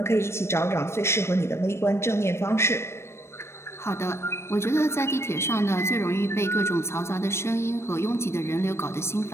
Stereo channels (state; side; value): late; right; 0.13 ms